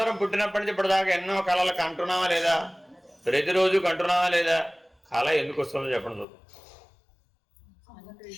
పుట్టినప్పటి నుంచి ఇప్పటిదాకా ఎన్నో కళలు కంటున్నామా లేదా? ప్రతిరోజు కంటున్నామా లేదా? కళ ఎందుకు వస్తుందో చెప్పండి చూద్దాం.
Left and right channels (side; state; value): right; drops out; at 6.2 s